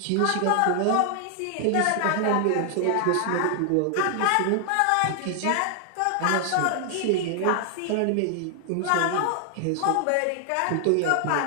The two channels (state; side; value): different; both; correlation 0.00